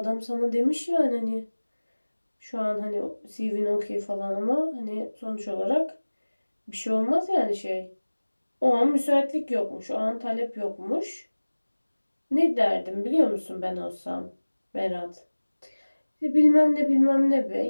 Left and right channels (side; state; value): both; inverted; correlation -1.00